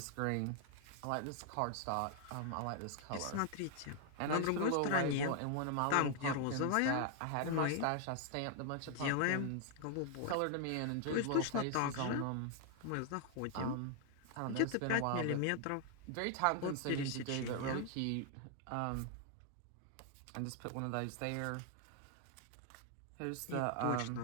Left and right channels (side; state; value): both; different; correlation 0.00